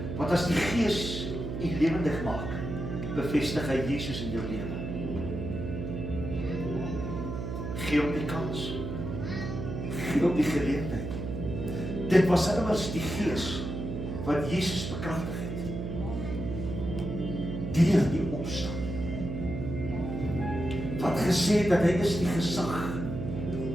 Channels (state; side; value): noise; right; hum, 5 dB below the sound